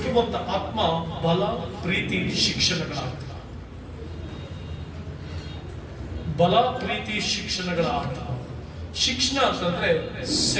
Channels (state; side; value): identical; both; correlation 1.00